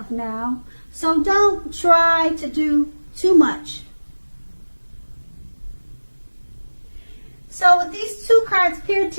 now, so don't try to do too much. So with these two cards paired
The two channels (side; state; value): both; inverted; correlation -1.00